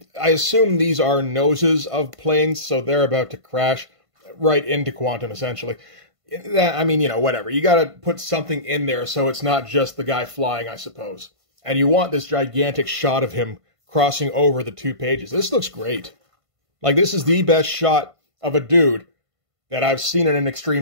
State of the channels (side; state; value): left; late; 1.5 ms